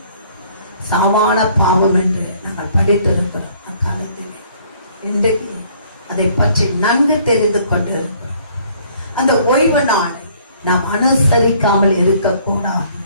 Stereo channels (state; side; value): inverted; both; correlation -0.60